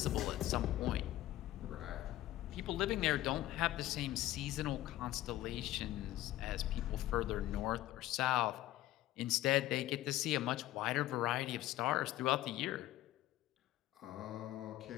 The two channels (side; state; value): right; quieter; 15.2 dB